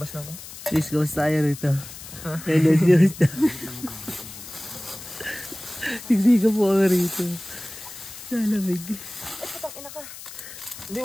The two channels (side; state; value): left; noise; hiss, 14 dB below the sound